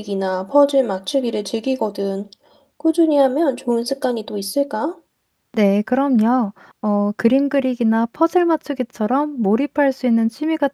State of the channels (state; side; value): identical; both; correlation 1.00